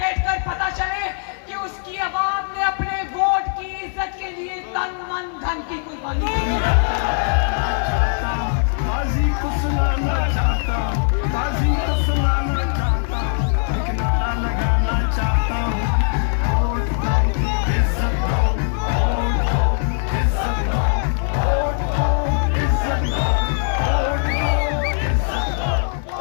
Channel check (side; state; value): right; silent; 59 dB below the other